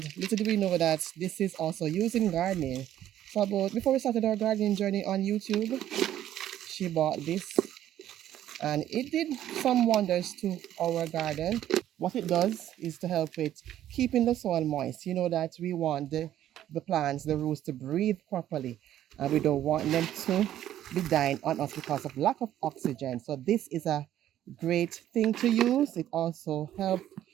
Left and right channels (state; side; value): quieter; left; 12.0 dB